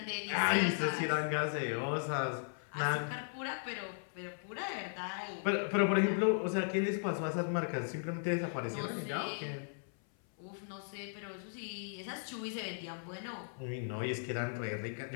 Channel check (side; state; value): right; silent; 53 dB below the other